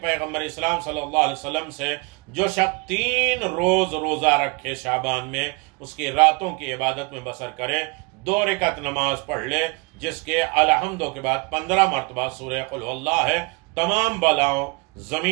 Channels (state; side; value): quieter; left; 30.0 dB